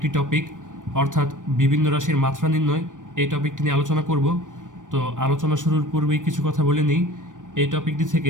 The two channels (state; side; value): late; left; 0.87 ms